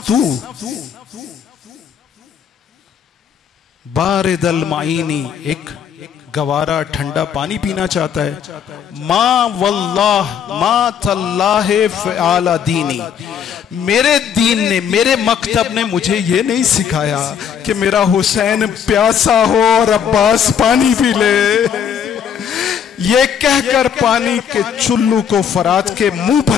تو بارد المعینی ایک گوارا ٹھنڈا پانی پینا چاہتا ہے. ما واللہ ما تاللہ فعال دینی، میرے دین نے، میرے مکتب نے مجھے یہ نہیں سکھایا کہ میرا حسین پیاسا ہو اور عباس پانی پی لے. یہ کہہ کر پانی کے چلو کو فرات کے منہ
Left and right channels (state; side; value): quieter; right; 8.0 dB